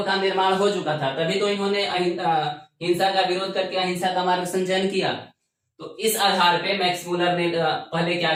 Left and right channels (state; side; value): identical; both; correlation 1.00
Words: का निर्माण हो चुका था, तभी तो इन्होंने हिंसा का विरोध करके अहिंसा का मार्ग संचयन किया। तो इस आधार पे मैक्स मूलर ने पहले क्या